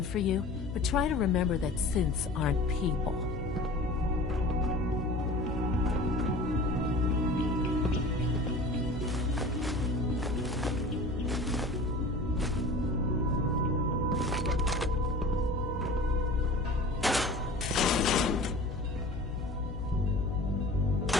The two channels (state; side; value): noise; left; hum, 7 dB below the sound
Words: for you, but try to remember that synths aren't people.